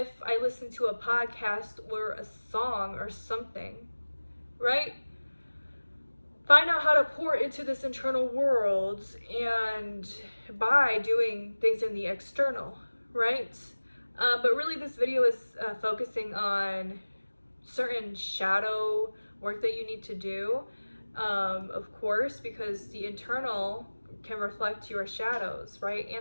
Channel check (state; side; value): inverted; both; correlation -1.00